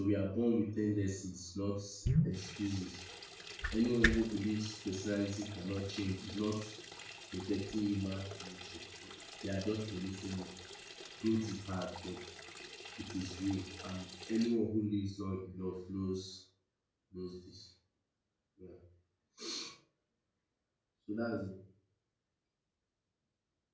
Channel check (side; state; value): both; identical; correlation 1.00